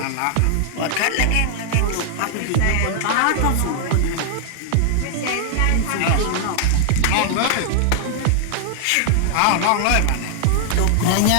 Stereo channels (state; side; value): different; both; correlation -0.01